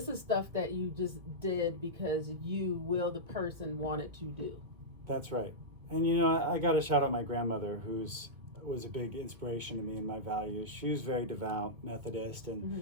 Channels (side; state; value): left; late; 2.2 ms